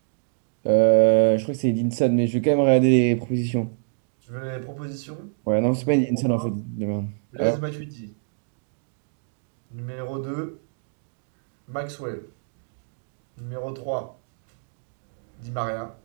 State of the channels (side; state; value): left; silent; digital silence